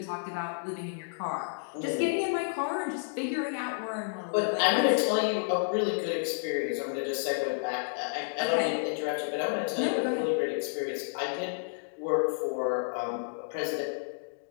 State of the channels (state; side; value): silent; right; digital silence